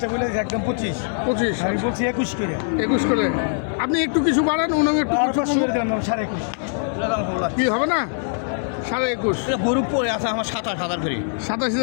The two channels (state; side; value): silent; right; 64 dB below the other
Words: বলে একদম 25। 25 আমি বলছি 21 কিরা। 21 করে। আপনি একটু কিছু বাড়ান, ওনাকে একটু আর কিছু 500 করে দিলাম 21.5। কি হবে না? 21.5 গরু পড়ে আছে আমার 27,000 করে।